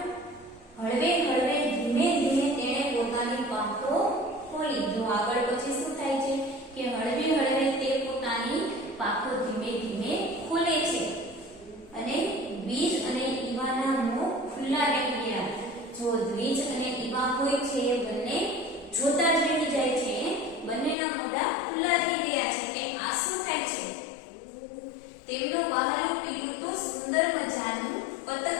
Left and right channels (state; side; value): drops out; right; at 21.0 s